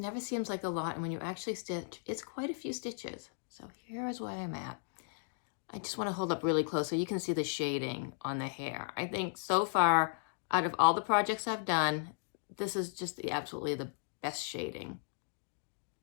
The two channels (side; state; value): right; silent; digital silence